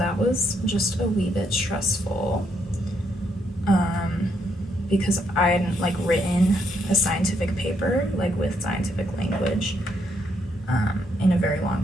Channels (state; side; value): normal; both; correlation 0.75